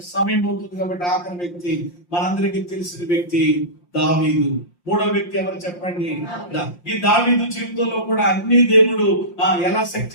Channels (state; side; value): late; right; 5.7 ms